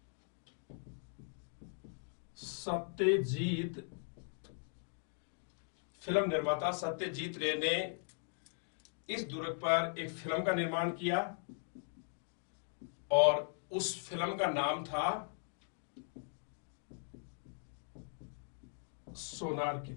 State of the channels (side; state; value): right; silent; digital silence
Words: सत्यजीत रे ने इस दुर्ग पर एक फिल्म का निर्माण किया और उस फिल्म का नाम था सोनार